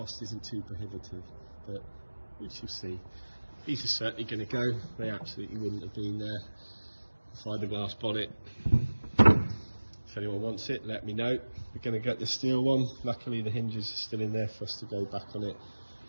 isn't too prohibitive, but we shall see. These are certainly going to go, they absolutely wouldn't have been there inside the glass bonnet. If anyone wants it, let me know. We're going to get the steel one. Luckily the hinges are still in there for us to go back on it.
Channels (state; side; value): inverted; both; correlation -1.00